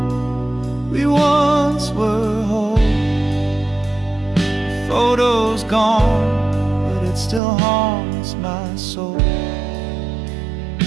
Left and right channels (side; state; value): left; drops out; at 7.4 s